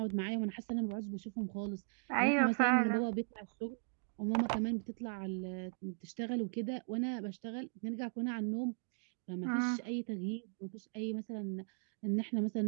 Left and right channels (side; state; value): left; silent; 52 dB below the other